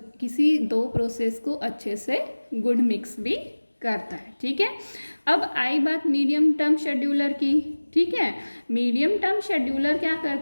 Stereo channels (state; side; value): inverted; both; correlation -1.00